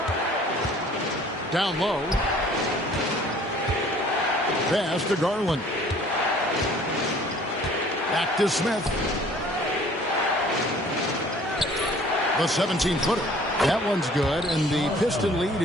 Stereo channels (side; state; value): both; normal; correlation 0.53